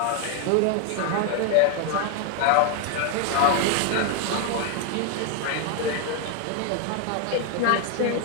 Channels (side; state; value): both; different; correlation 0.01